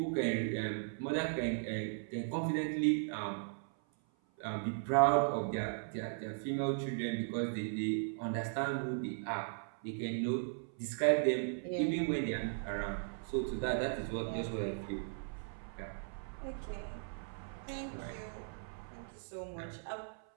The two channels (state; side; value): silent; left; 53 dB below the other